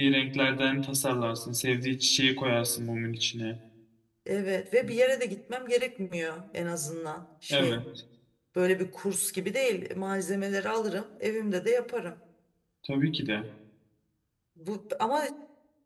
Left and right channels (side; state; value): both; identical; correlation 1.00